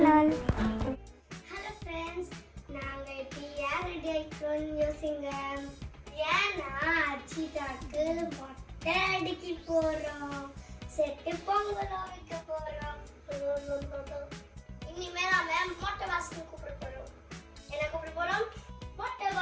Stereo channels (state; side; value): identical; both; correlation 1.00